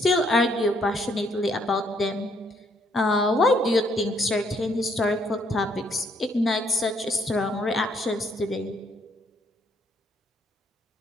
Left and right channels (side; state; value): both; normal; correlation 0.69